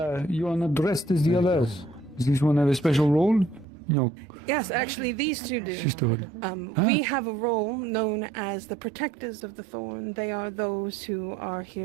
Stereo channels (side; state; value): left; drops out; at 3.7 s